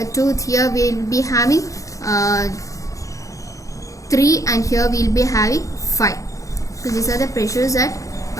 tooth here we will be having 3 and here we will be having 5. So these are the pressures at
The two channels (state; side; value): late; right; 0.16 ms